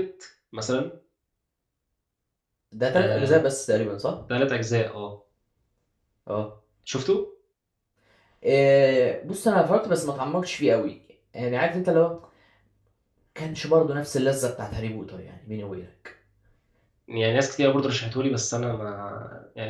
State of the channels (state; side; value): identical; both; correlation 1.00